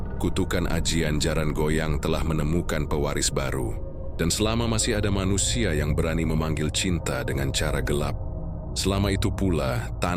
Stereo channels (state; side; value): identical; both; correlation 1.00